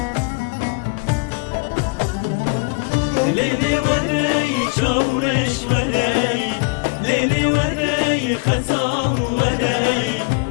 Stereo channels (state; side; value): quieter; right; 30.4 dB